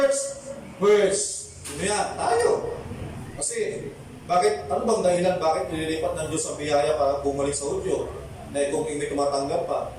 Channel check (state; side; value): identical; both; correlation 1.00